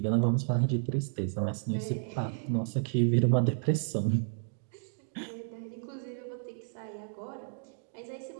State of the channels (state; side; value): silent; left; digital silence